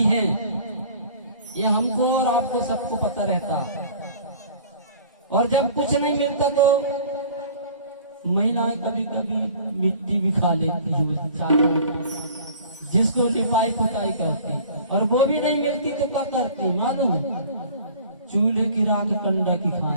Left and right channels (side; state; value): both; inverted; correlation -0.47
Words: हैं। ये हमको और आपको सबको पता रहता। और जब कुछ नहीं मिलता तो महिलाएं कभी कभी मिट्टी भी खा लेती है, चारों जिसको लिपाई पुताई करती, और वो भी नहीं मिलती तो क्या करती मालूम? चूल्हे की राख कंडा की